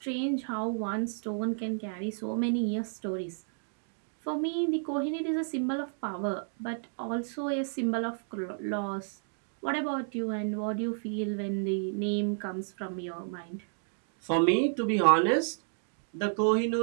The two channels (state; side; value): silent; left; digital silence